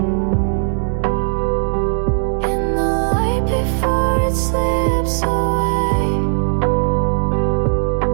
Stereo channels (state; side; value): silent; left; digital silence